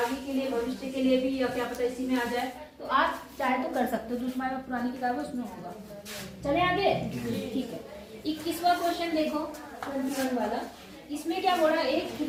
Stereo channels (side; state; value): both; identical; correlation 1.00